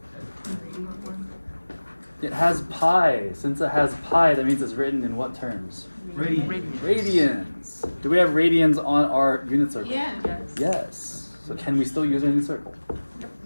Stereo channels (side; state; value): both; inverted; correlation -1.00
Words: It has pi. Since it has pi, that means it's written in what terms? Radians. Do we have radians on our unit circle? Yeah. Yes. So can we still use our unit circle?